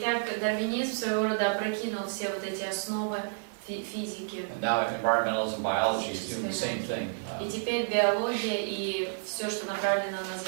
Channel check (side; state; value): left; silent; digital silence